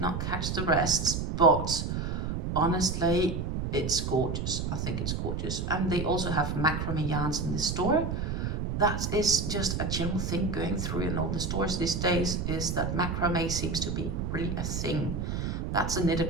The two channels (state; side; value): noise; right; rumble, 2 dB below the sound